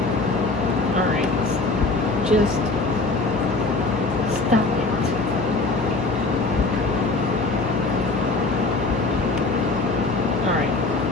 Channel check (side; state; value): right; quieter; 3.4 dB